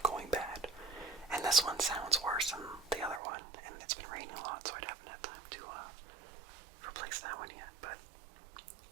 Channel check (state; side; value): drops out; left; at 3.2 s